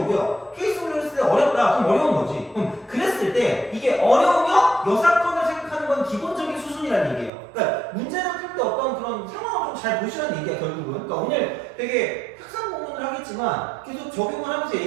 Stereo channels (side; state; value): left; drops out; at 7.3 s